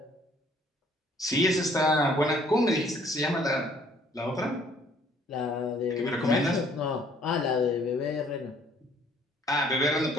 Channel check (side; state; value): both; normal; correlation 0.60